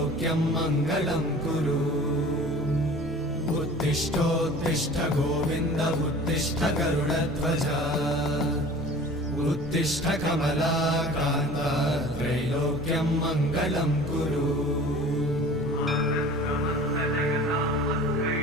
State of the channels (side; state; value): both; normal; correlation 0.42